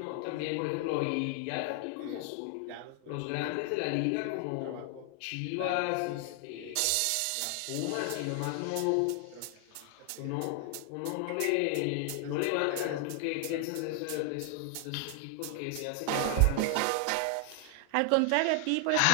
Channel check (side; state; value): both; different; correlation 0.00